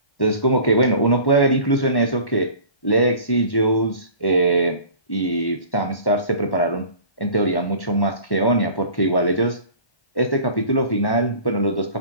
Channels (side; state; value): right; late; 1.1 ms